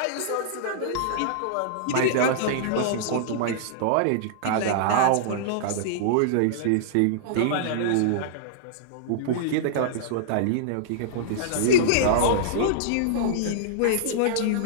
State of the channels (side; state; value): both; different; correlation -0.02